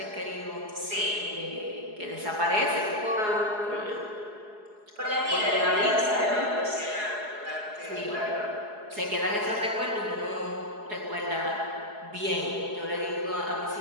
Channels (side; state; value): left; late; 4.8 ms